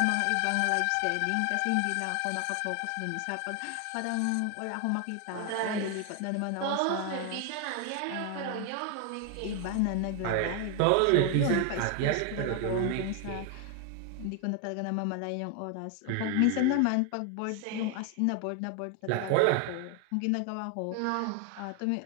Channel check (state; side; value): different; both; correlation 0.00